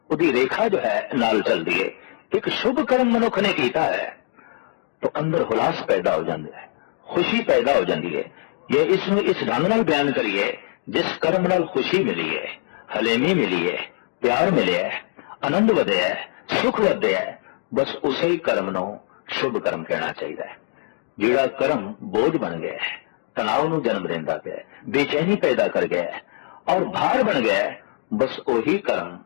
उसकी रेखा जो है नाल चलती है। एक शुभ कर्म मनुख ने कीता है तो अंदर हुलास पैदा हो जाता है, खुशी पैदा हो जाती है। ये इसमें इस ढंग नाल बयान करिए, जिस कर्म नाल खुशी मिली है, हलेमी मिली है, प्यार मिले है, आनंद वधिया है, सुख वधिया है, बस उसे ही कर्म नूं शुभ कर्म कहना चाहिए। जिहड़ा कर्म बोझ बन गया है, तनाव नूं जन्म देंदा पिया है, बेचैनी पैदा कर गया है और भार बन गया है, बस वही कर्म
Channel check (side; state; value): right; silent; digital silence